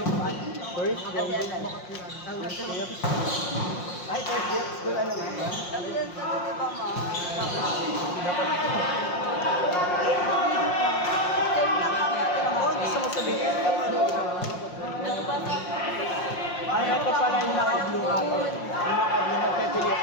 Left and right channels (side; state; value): right; late; 5.6 ms